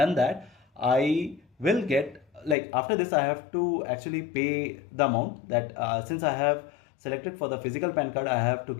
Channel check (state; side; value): drops out; right; at 2.6 s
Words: that, I will get, like after this I have to actually pay the amount that since I have selected for the physical PAN card, I have to